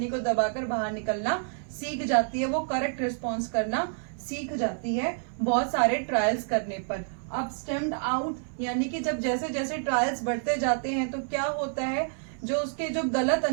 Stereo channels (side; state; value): left; silent; 59 dB below the other